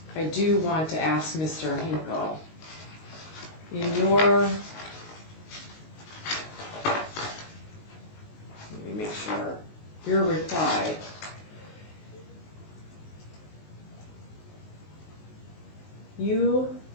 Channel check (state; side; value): late; right; 19 ms